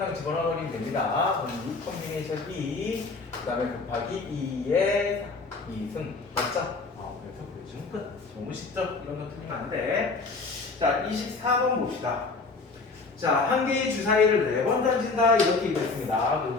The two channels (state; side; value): quieter; right; 4.0 dB